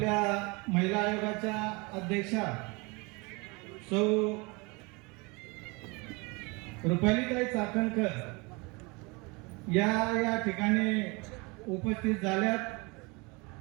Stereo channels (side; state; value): left; quieter; 27.5 dB